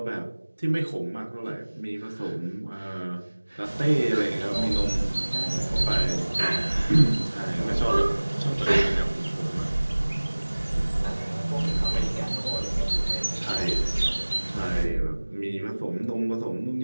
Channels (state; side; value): inverted; both; correlation -1.00